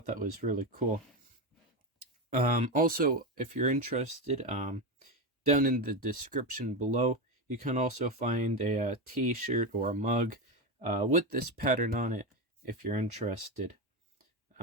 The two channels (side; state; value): both; normal; correlation 0.15